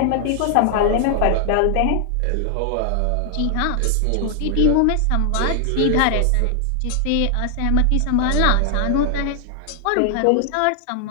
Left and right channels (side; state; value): both; different; correlation 0.00